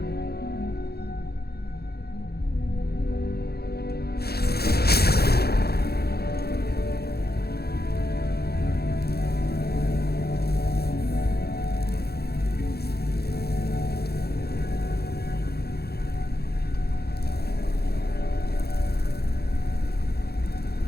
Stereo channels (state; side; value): late; right; 0.46 ms